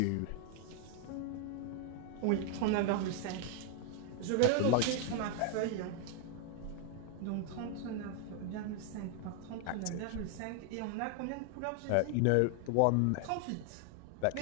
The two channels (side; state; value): both; different; correlation 0.01